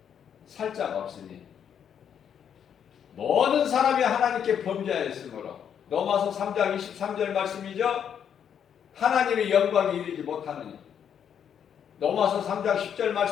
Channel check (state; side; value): quieter; right; 8.4 dB